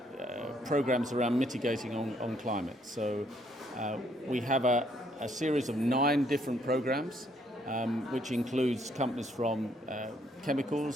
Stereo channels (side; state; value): both; normal; correlation 0.69